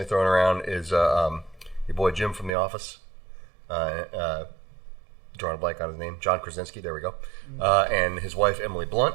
thrown around is your boy Jim from The Office. Drawing a blank on his name, John Krasinski. There we go. And his wife Emily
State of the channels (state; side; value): drops out; left; at 2.5 s